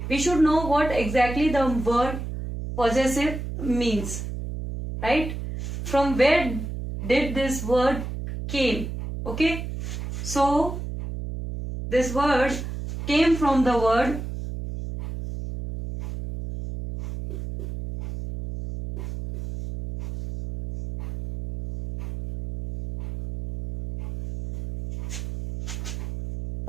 we should know what exactly the word possessive means, right? From where did this word came? Okay, so this word came from the word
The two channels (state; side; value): noise; right; hum, 6 dB below the sound